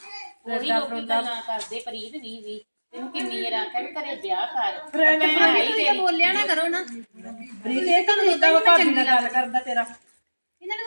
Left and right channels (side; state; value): both; inverted; correlation -1.00